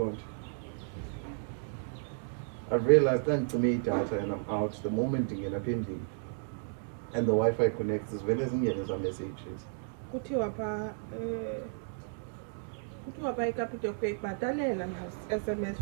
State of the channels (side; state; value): left; silent; digital silence